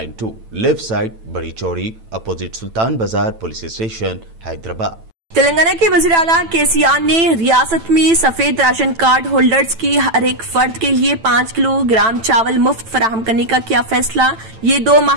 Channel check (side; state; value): left; late; 9.0 ms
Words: left side, बड़ी चौड़ी, अपोजिट सुल्तान बाजार पुलिस स्टेशन, हैदराबाद। तेलंगाना के वज़ीर आला KCR ने रियासत में सफेद राशन कार्ड होल्डर्स की हर एक फर्द के लिए 5 किलोग्राम चावल मुफ्त फराहम करने का किया फैसला। ये 2